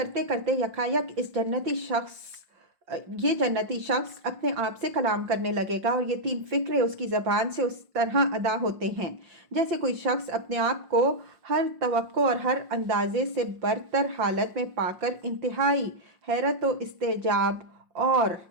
کرتے یکایک یہ جنتی شخص اپنے آپ سے کلام کرنے لگے گا، اور یہ 3 فقرے اس کی زبان سے اس طرح ادا ہوتے ہیں جیسے کوئی شخص اپنے آپ کو ہر توقع اور ہر اندازے سے برتر حالت میں پا کر انتہائی حیرت و استعجاب اور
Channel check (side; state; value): left; late; 5.6 ms